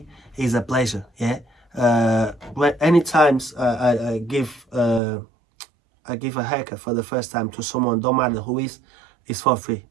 It's a pleasure. Yeah. When any times I give a haircut for the first time to someone, don't matter who is, it's for free.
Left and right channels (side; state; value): left; drops out; at 5.0 s